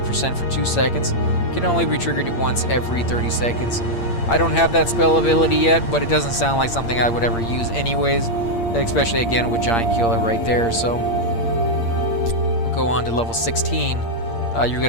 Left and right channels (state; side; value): late; right; 8.7 ms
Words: for 2 seconds. Can only be triggered once every 30 seconds. I don't have that spell ability yet, but it doesn't sound like something I would ever use anyways, especially again with Giant Killer right there. So we'll go on to level 16. You get